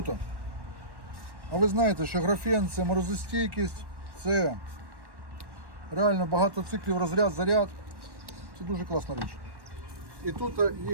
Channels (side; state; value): left; late; 1.1 ms